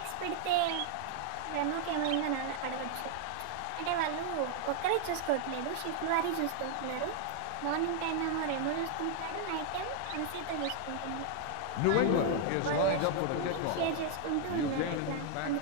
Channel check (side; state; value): both; different; correlation 0.00